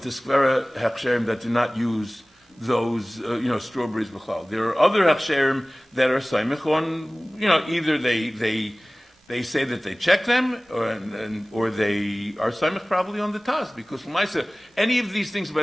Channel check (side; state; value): both; normal; correlation 0.98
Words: the skvera hechsherim that do not use those, strawberries b'chlal. There are other hechsherim that are saimich on, either they say that they check them, or they are saimich probably on the Taz, because l'maisa, any of these things by